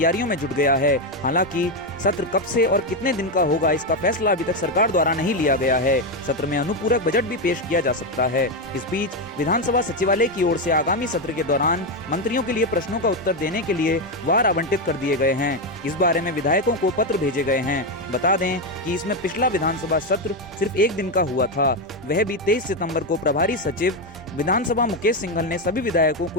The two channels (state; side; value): normal; both; correlation 0.08